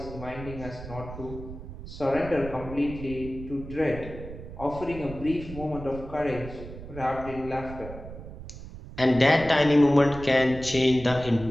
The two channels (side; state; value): right; noise; rumble, 12 dB below the sound